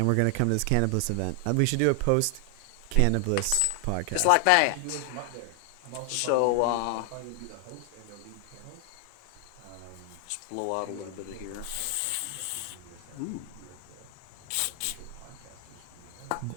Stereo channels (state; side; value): different; both; correlation 0.00